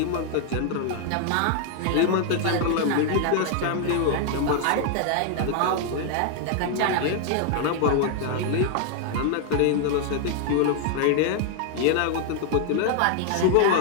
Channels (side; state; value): both; different; correlation 0.00